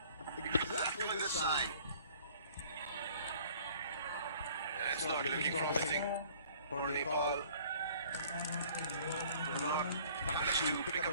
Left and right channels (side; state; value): both; inverted; correlation -0.53